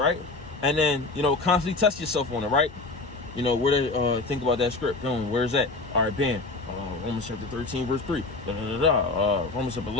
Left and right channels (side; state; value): right; quieter; 3.4 dB